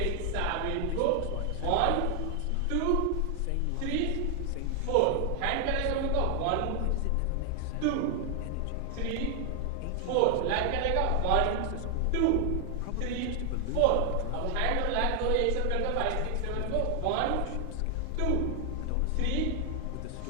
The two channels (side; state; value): both; different; correlation 0.00